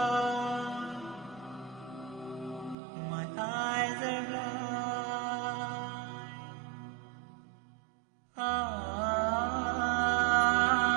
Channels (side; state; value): left; drops out; at 2.8 s